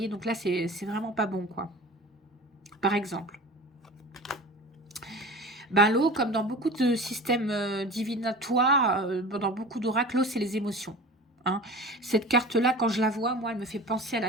donc là, c'est vraiment pas bon, quoi. Par exemple. Ben, l'eau, comme dans beaucoup de systèmes divinatoires, dans beaucoup d'oracles, l'eau, c'est les émotions. Hein. Cette carte-là, quand je la vois, moi, elle me fait penser à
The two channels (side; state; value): both; normal; correlation 0.36